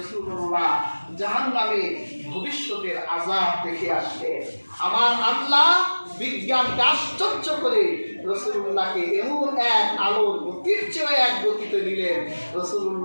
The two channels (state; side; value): inverted; both; correlation -1.00